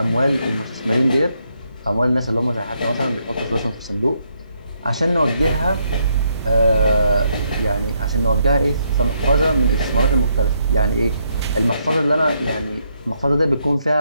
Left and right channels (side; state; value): both; inverted; correlation -0.75